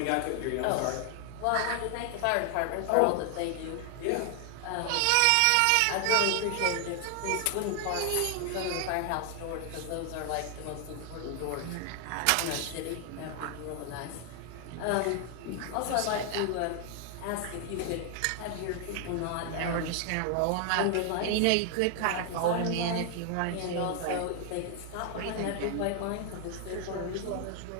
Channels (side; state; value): both; different; correlation 0.00